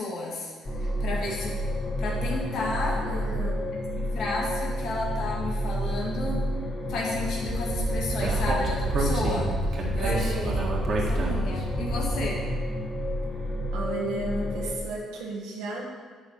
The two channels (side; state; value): both; normal; correlation 0.75